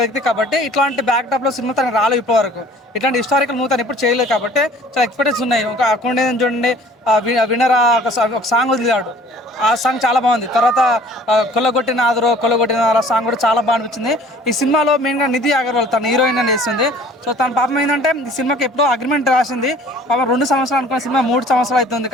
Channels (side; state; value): both; normal; correlation 0.51